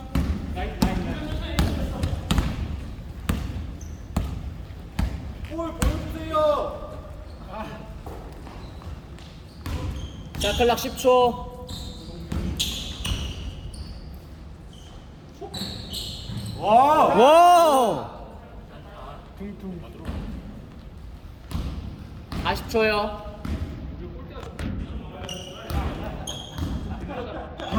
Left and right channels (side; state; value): both; identical; correlation 1.00